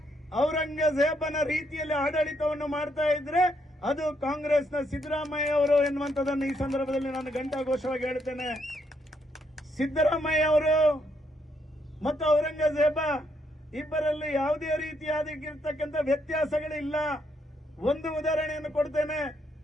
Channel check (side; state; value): both; normal; correlation 0.75